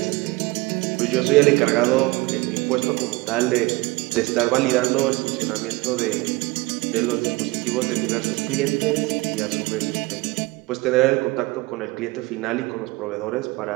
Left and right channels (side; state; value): left; quieter; 22.4 dB